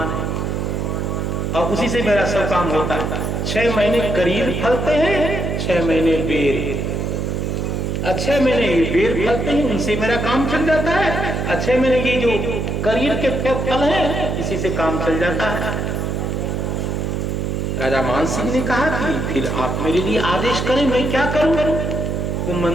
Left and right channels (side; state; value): right; noise; hum, 1 dB below the sound